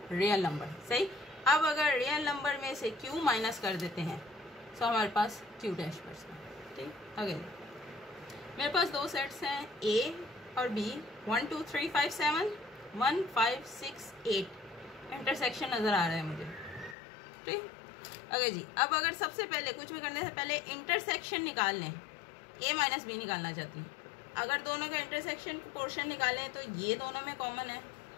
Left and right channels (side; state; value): right; drops out; at 16.9 s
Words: real number, सही। अब अगर रियल नंबर में से q माइनस कर देते हैं तो हमारे पास q डैश बचता है, ठीक। अगेन मेरे पास 2 सेट्स हैं a और b, 1 2 3 5 7 1 5 6 8। इंटरसेक्शन नज़र आ रहा है मुझे, ठीक। ओके जी, अब अगर सबसे पहले कुछ भी करने से पहले इंटरसेक्शन निकाल लें, a माइनस बी निकालना चाहती हूँ। अगर दोनों का इंटरसेक्शन पोर्शन निकालें तो ये दोनों में कॉमन है,